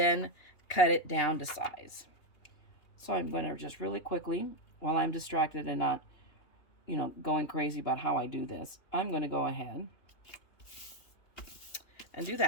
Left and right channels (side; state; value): right; late; 2.8 ms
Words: cut it down to size. So I'm going to just really quickly, while I'm distracted and not, you know, going crazy about how I do this, I'm going to go ahead and do